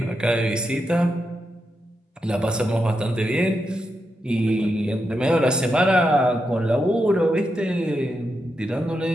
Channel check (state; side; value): normal; both; correlation 0.85